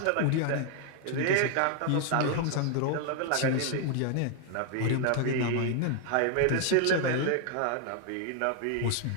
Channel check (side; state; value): both; different; correlation 0.00